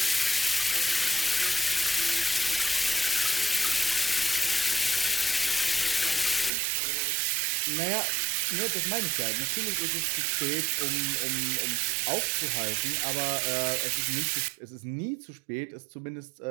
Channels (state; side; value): drops out; left; at 6.5 s